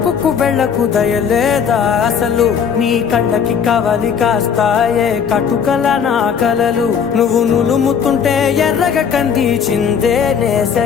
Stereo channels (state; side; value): quieter; right; 7.1 dB